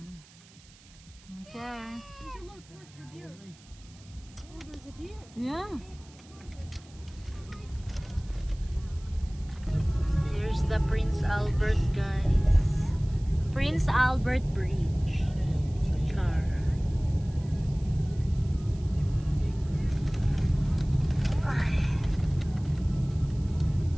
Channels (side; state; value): right; noise; hiss, 25 dB below the sound